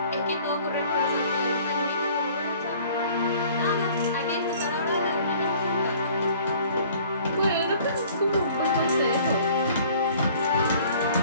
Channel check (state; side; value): inverted; both; correlation -0.52